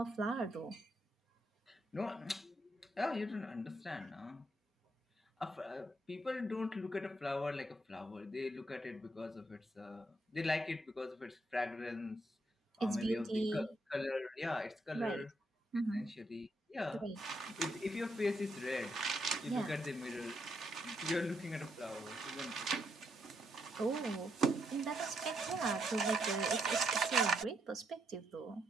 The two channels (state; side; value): normal; both; correlation 0.77